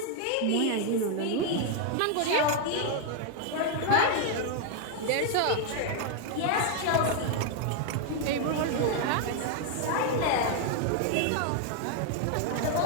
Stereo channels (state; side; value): different; both; correlation 0.01